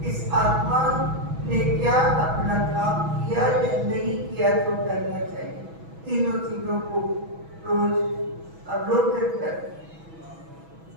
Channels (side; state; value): left; late; 6.1 ms